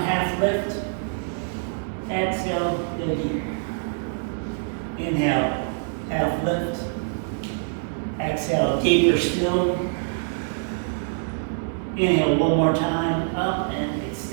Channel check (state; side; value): silent; left; digital silence